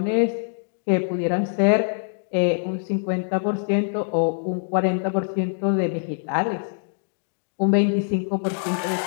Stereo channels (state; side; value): silent; right; digital silence